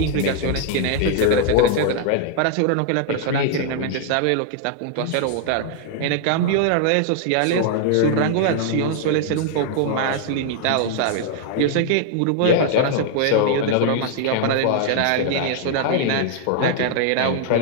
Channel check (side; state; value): both; different; correlation -0.01